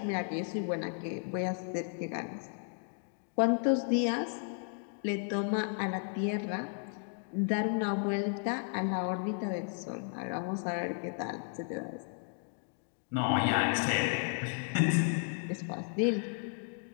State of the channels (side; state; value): right; silent; 55 dB below the other